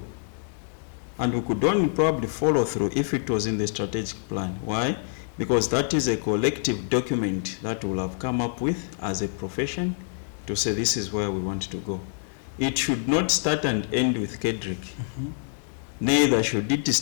and we could only probably follow through if it was in the strategic plan. Why? Because that is a collective document that we'll have come up with as a profession to say this is where we want to go. It should not start and end with KEDRICK. Mm-hmm. Neither should it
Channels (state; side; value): silent; right; digital silence